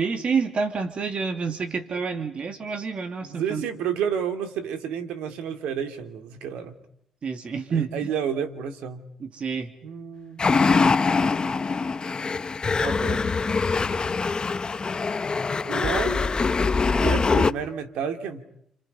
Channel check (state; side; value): normal; both; correlation 0.77